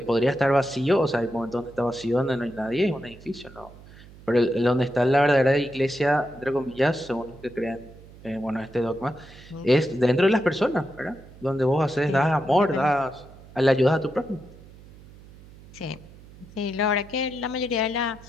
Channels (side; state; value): right; noise; hum, 21 dB below the sound